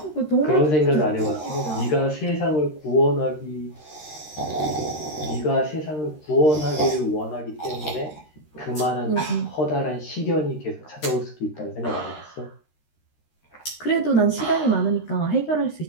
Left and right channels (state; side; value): late; right; 13 ms